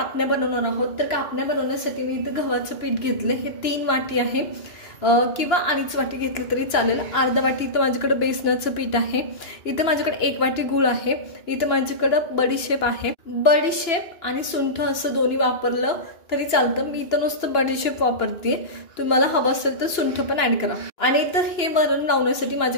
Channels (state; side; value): late; right; 2.9 ms